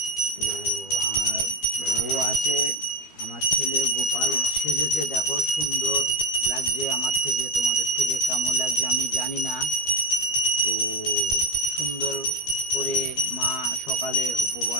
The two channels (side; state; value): right; late; 12 ms